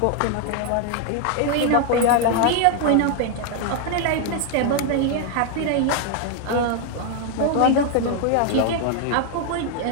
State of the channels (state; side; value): different; both; correlation 0.00